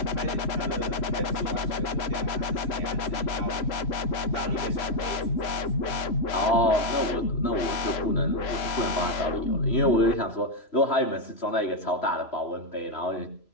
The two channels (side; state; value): right; late; 3.0 ms